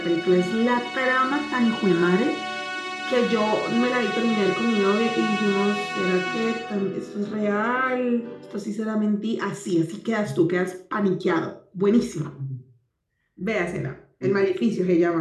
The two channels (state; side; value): identical; both; correlation 1.00